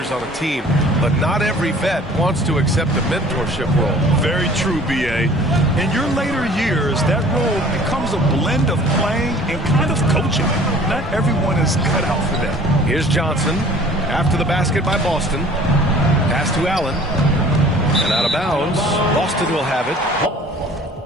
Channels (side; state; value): both; normal; correlation 0.49